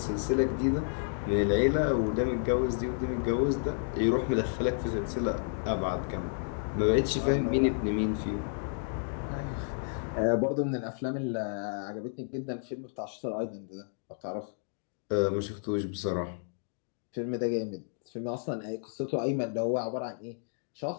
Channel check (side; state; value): right; silent; digital silence